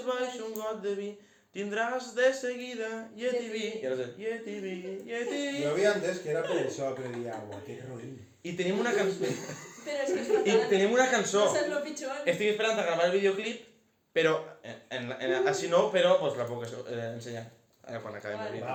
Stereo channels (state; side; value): identical; both; correlation 1.00